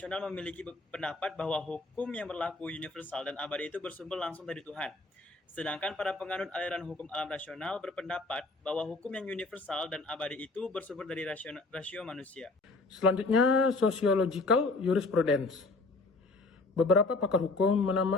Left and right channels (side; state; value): right; quieter; 3.4 dB